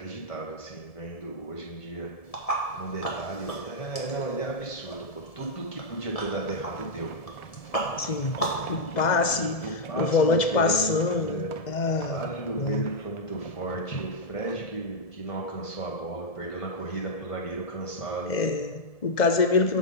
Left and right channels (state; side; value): late; right; 1.7 ms